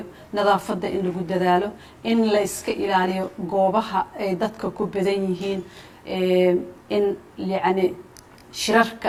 nadaafadda in lagu dadaalo in la iska ilaaliyo goobaha ay dadka ku badan yihiin in yani shirarka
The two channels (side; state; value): both; identical; correlation 1.00